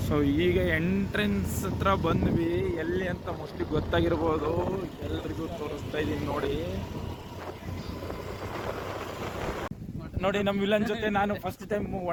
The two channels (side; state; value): both; identical; correlation 1.00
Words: So ಈಗ ಎಂಟ್ರೆನ್ಸ್ ಹತ್ರ ಬಂದ್ವಿ. ಎಲ್ಲಿ ಅಂತ ಮೋಸ್ಟ್ಲಿ ಗೊತ್ತಾಗಿರ್ಬೋದು, ಎಲ್ರಿಗೂ ತೋರಿಸ್ತಾ ಇದೀನಿ ನೋಡಿ. ನಮ್ಮ ವಿಲನ್ ಜೊತೆ ನಾನು ಫಸ್ಟ್ ಟೈಮ್